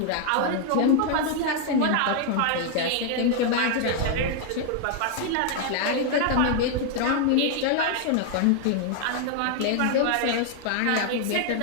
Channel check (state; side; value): different; both; correlation 0.00